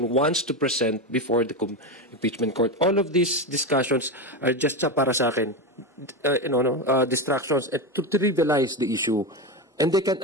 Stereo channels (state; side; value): normal; both; correlation 0.16